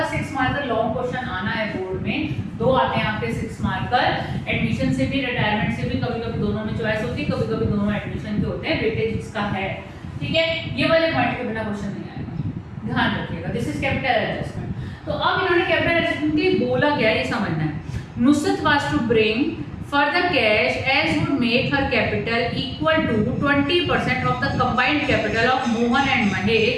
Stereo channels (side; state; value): both; identical; correlation 1.00